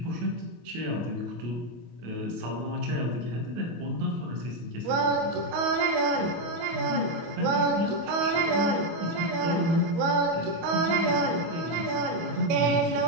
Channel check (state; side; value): late; left; 24 ms